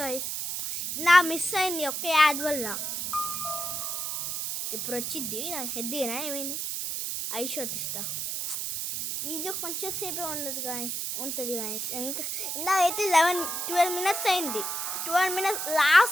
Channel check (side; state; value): right; noise; hiss, 2 dB below the sound